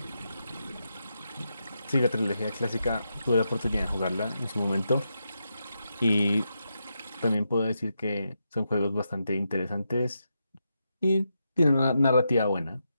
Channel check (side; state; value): both; inverted; correlation -0.85